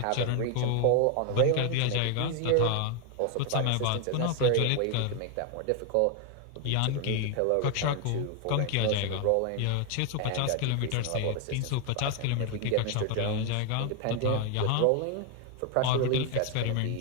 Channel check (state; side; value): different; both; correlation 0.00